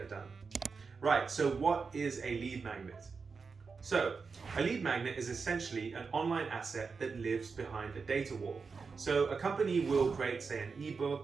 done. Right, so what is a lead magnet? So, a lead magnet is essentially an online asset that lives behind a data wall. So a company will create, say, an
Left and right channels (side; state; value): left; quieter; 5.0 dB